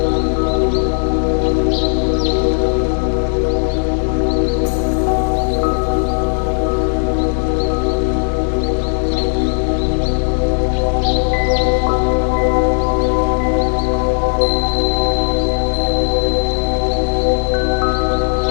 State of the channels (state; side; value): silent; right; digital silence